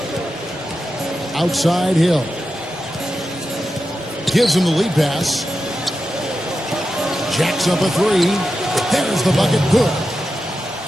Outside Hill. Gives him the lead pass. Jacks up a three. There's the bucket. Good.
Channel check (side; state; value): both; normal; correlation 0.90